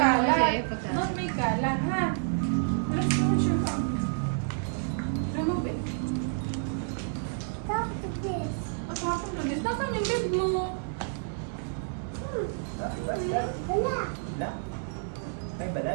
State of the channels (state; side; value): silent; left; 58 dB below the other